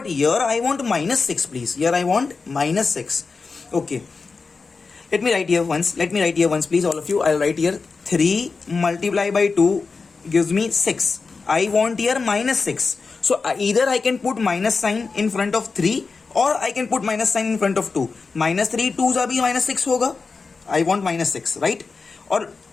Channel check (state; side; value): quieter; right; 4.5 dB